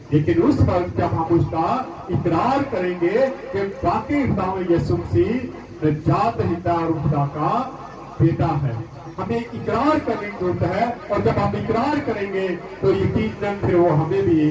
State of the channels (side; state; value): both; identical; correlation 1.00